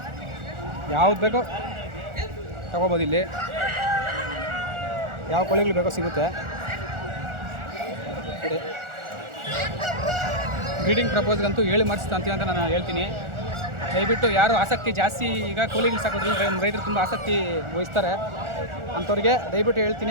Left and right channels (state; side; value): late; left; 1.4 ms